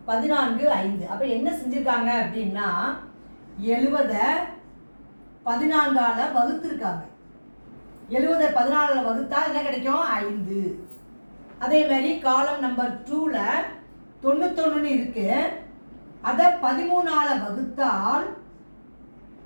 14 5. அப்போ என்ன செஞ்சுருக்காங்க அப்படின்னா 70 14ஆல் வகுத்துருக்காங்க. 70 14ஆல் வகுத்தா என்ன கிடைக்கும்? 5. அதே மாதிரி காலம் நம்பர் 2ல் 91 இருக்கு, அதை 13ஆல் வகுத்தால்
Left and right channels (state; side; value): inverted; both; correlation -1.00